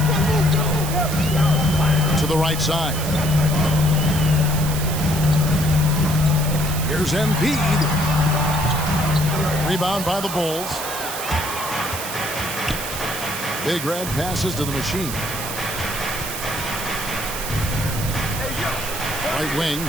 To the right side. Here's Embiid. Rebound by the Bulls. Big Red passes to the Machine. Right wing.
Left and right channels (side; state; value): right; noise; hiss, 7 dB below the sound